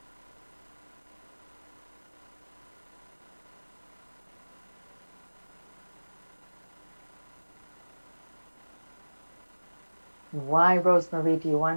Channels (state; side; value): inverted; both; correlation -1.00